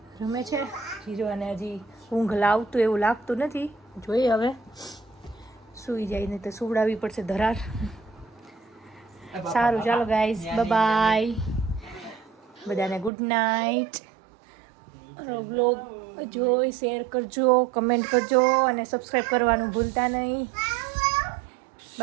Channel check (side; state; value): left; drops out; at 13.1 s